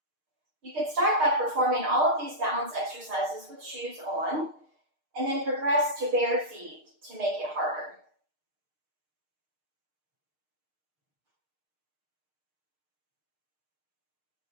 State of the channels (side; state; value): left; late; 6.5 ms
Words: You could start by performing all of these balance exercises with shoes on, and then progress to bare feet to make it harder.